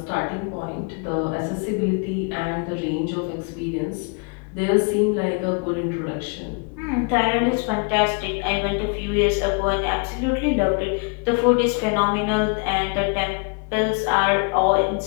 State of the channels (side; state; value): right; quieter; 34.9 dB